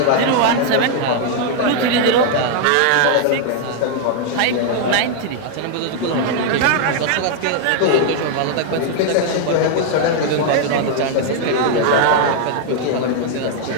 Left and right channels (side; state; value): both; different; correlation 0.00